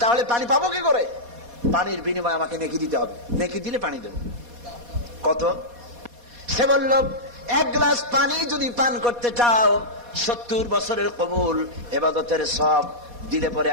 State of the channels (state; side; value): late; left; 4.2 ms